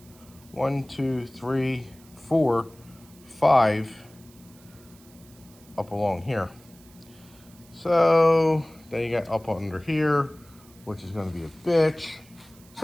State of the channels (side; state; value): right; noise; hiss, 26 dB below the sound